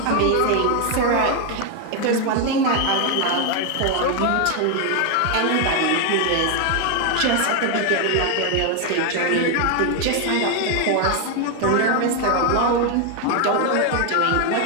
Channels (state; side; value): different; both; correlation 0.01